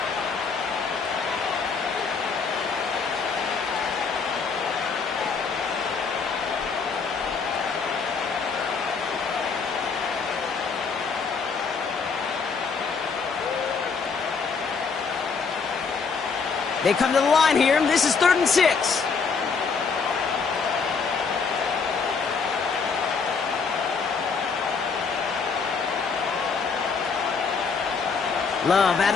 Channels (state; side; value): quieter; right; 5.2 dB